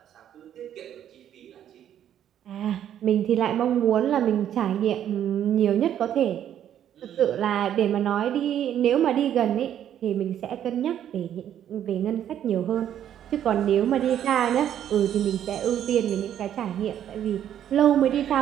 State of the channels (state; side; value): quieter; left; 10.3 dB